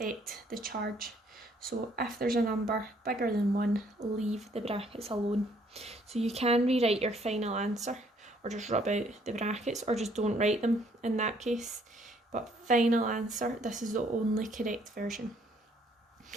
the charge. So if there's a number bigger than 1, leave the brackets alone. So you can rewrite your final answer, or just rub out the brackets, or just don't write them in that case. But final answer, this is the only correct version.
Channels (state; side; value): normal; both; correlation 0.65